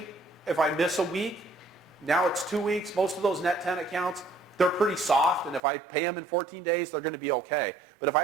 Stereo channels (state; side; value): drops out; left; at 5.6 s